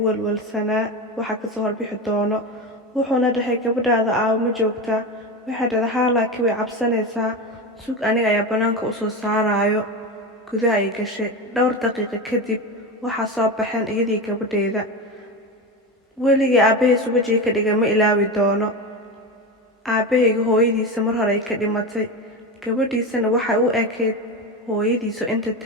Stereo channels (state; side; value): normal; both; correlation 0.21